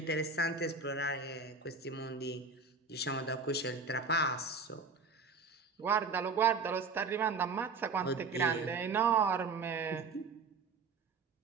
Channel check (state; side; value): quieter; left; 4.5 dB